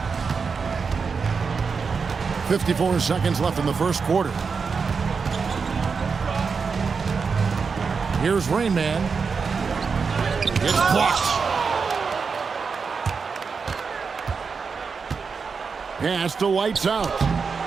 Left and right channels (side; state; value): left; quieter; 5.3 dB